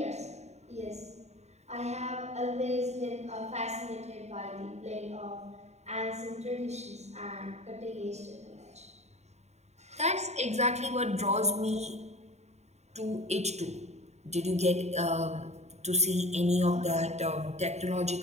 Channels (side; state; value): left; late; 0.32 ms